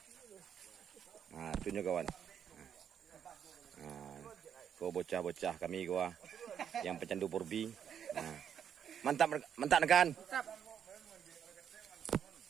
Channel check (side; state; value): left; quieter; 8.4 dB